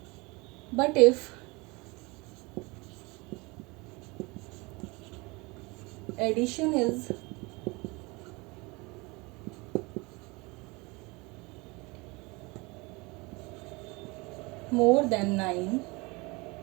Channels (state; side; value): quieter; left; 25.6 dB